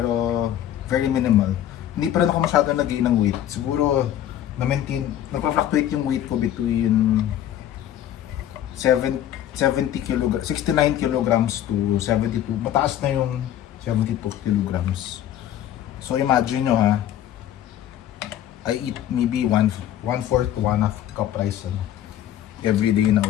very minimal. Hindi pa rin ako masyado nag-gain ng weight. Siguro, nagpa-fluctuate yung weight ko between 69 kilograms to 72. Mataas na yung 72 kilograms. So imagine nyo ha, I eat maybe 1/4 to 1/2 cup rice everyday na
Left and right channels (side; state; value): right; quieter; 11.5 dB